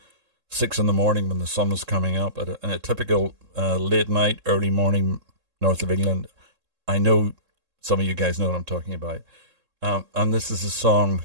6 a.m. when the sun was coming up in a typical late night, early morning north of England. I know some of you guys know what I'm talking about. And this is a song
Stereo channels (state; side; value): late; left; 3.7 ms